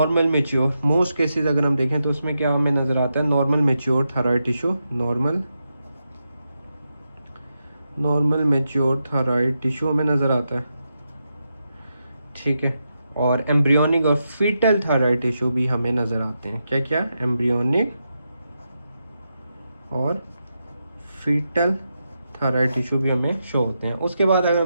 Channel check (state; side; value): inverted; both; correlation -0.86